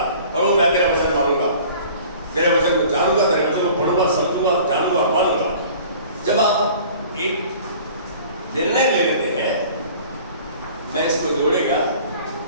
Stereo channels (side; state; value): both; inverted; correlation -0.47